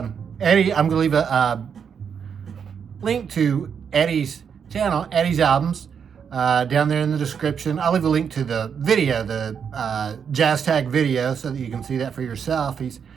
I'm going to leave a link to Eddie's channel, Eddie's Albums, down there in the description. I'll leave a link to the video, the jazz tag video, so that you can see that for yourself. He's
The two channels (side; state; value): left; quieter; 7.1 dB